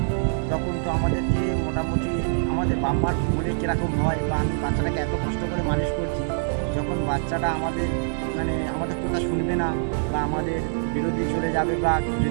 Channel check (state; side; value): silent; left; digital silence